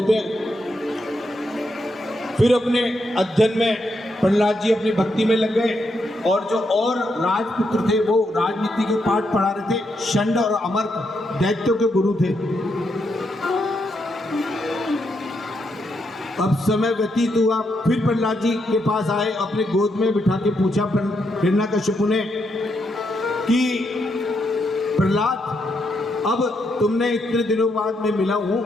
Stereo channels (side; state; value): both; normal; correlation 0.80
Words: हैं। फिर अपने अध्ययन में प्रहलाद जी अपनी भक्ति में लग गए, और जो और राजपुत्र थे वो राजनीति के पाठ पढ़ा रहे थे। षंड और अमर्क दैत्यों के गुरु थे। अब समय व्यतीत हुआ, फिर प्रहलाद जी के पास आए, अपने गोद में बिठा के पूछा हिरण्यकश्यप ने कि प्रहलाद, अब तुमने इतने दिनों बाद मैं मिला हूं,